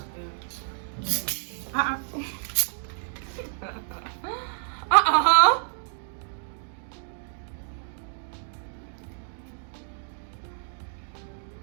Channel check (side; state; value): left; silent; digital silence